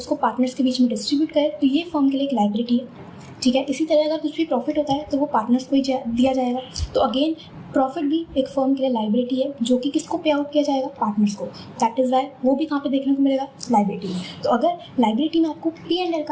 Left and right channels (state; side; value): identical; both; correlation 1.00